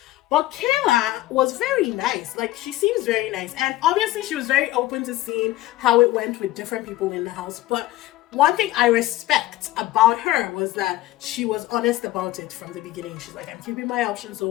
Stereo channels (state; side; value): quieter; right; 16.1 dB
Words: But Kayla was very nice. Like, she seems very nice. And obviously she was very open to seeing how it went with different people in the house. But one thing I respect about her was that she was honest about it from the beginning. She's like, I'm keeping my options